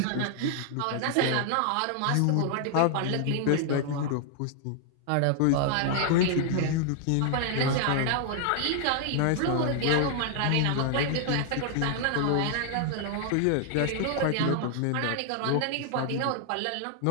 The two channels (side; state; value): both; different; correlation 0.00